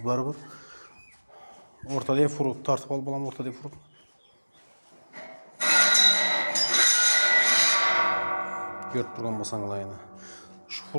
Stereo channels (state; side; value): inverted; both; correlation -1.00